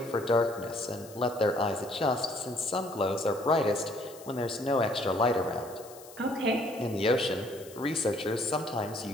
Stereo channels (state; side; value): noise; left; hiss, 19 dB below the sound